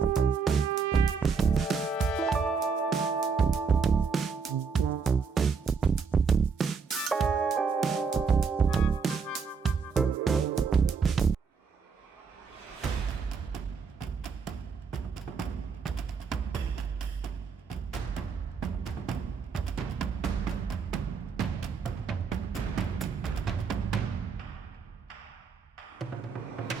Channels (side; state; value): left; quieter; 5.5 dB